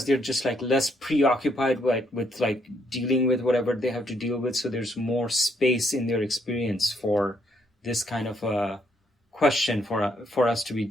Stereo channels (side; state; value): both; normal; correlation 0.72